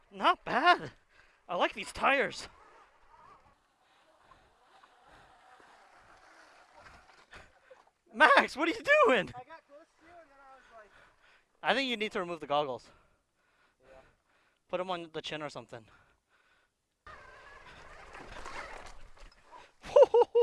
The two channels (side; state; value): both; identical; correlation 1.00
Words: Not bad. I like these tires. Max, what are you doing? I got close to you and then I was like... I think you need to remove the goggles. Yeah. Put them on the chin or something.